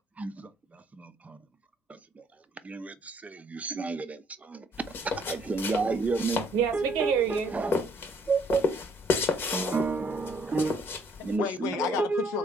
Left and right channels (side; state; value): both; normal; correlation 0.64